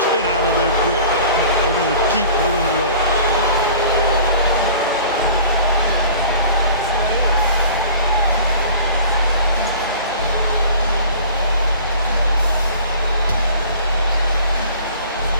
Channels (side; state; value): both; inverted; correlation -0.46